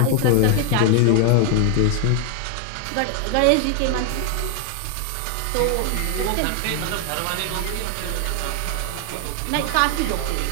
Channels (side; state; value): both; different; correlation 0.01